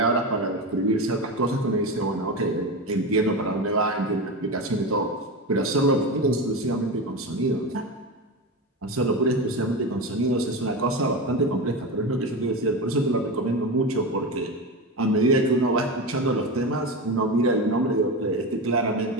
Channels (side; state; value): both; normal; correlation 0.21